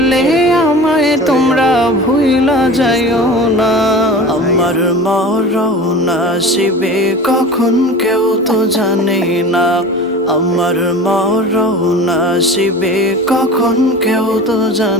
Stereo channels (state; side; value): normal; both; correlation 0.36